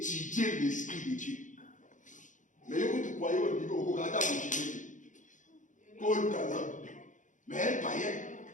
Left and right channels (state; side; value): late; right; 0.37 ms